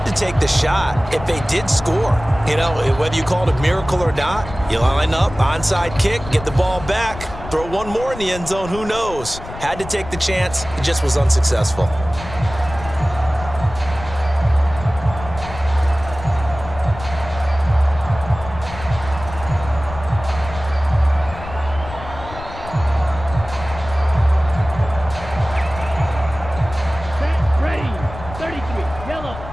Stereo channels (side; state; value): left; noise; rumble, 12 dB below the sound